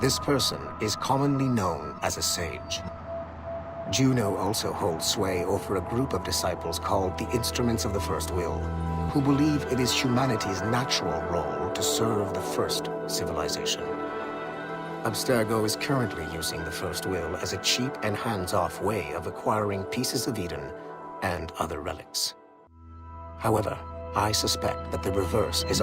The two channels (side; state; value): both; identical; correlation 1.00